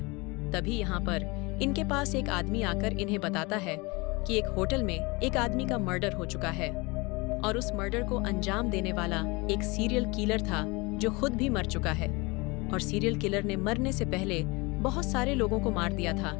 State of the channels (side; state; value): right; quieter; 25.9 dB